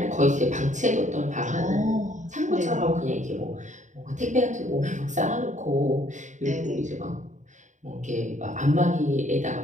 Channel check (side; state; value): left; late; 0.35 ms